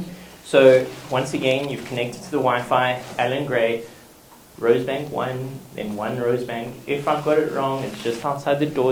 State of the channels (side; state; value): both; identical; correlation 1.00